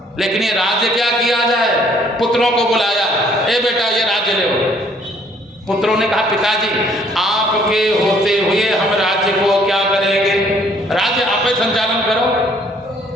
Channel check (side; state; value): both; normal; correlation 0.62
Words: लेकिन ये राज्य क्या किया जाए? पुत्रों को बुलाया, ए बेटा ये राज्य ले। पुत्रों ने कहा पिताजी आपके होते हुए हम राज्य को क्या करेंगे? राज्य आप ही संचालन करो।